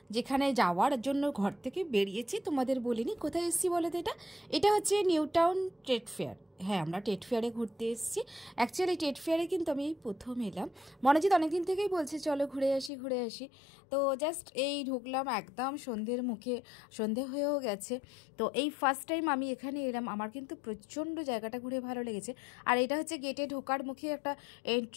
যেখানে যাওয়ার জন্য ঘর থেকে বেরিয়েছি। তোমাদের বলিনি কোথায় এসেছি বলো তো। এটা হচ্ছে নিউ টাউন ট্রেড ফেয়ার। হ্যাঁ, আমরা ট্রেড ফেয়ারে ঘুরতে এসেছি। অ্যাকচুয়ালি ট্রেড ফেয়ারে কিন্তু আমি এই প্রথম এলাম। মনোজিৎ অনেকদিন থেকেই বলছে চলো ঘুরে আসি। তো জাস্ট এই ঢুকলাম, একদম সন্ধ্যের মুখে, সন্ধে হয়েও গেছে। তো এই ফার্স্ট টাইম আমি এখানে এলাম, আমার কিন্তু প্রচণ্ড জায়গাটা ঘুরে ভালো লেগেছে। আর এটা হচ্ছে গেটে ঢোকার মুখে একটা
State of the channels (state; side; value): drops out; right; at 12.9 s